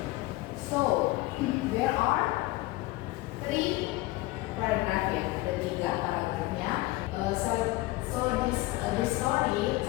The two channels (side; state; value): right; quieter; 19.4 dB